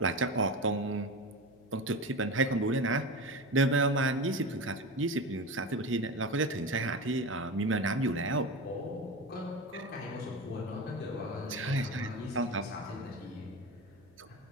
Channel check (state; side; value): noise; right; hum, 28 dB below the sound